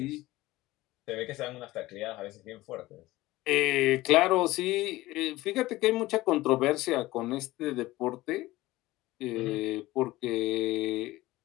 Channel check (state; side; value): quieter; right; 18.2 dB